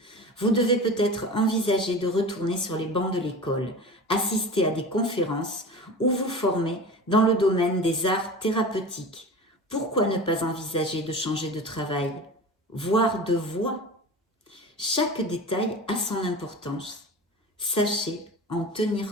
Vous devez peut-être envisager de retourner sur les bancs de l'école, assister à des conférences ou vous former dans le domaine des arts thérapeutiques. Pourquoi ne pas envisager de changer de travail, voire de voie ? Chaque détail a son importance. Sachez en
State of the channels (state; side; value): normal; both; correlation 0.34